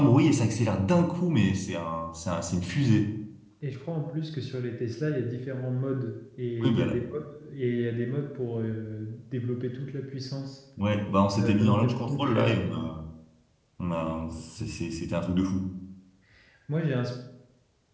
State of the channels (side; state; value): both; identical; correlation 1.00